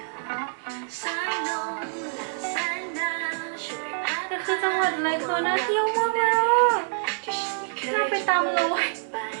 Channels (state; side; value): silent; left; digital silence